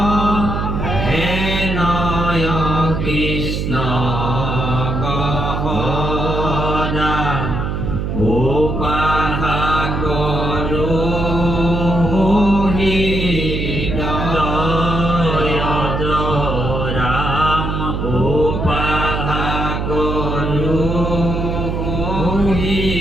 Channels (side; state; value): right; noise; hum, 2 dB below the sound